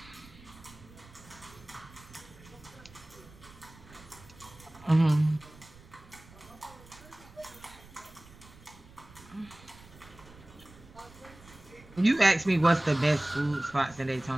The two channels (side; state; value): right; noise; rumble, 21 dB below the sound